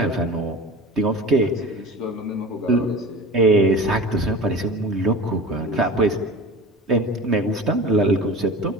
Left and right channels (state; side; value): normal; both; correlation 0.35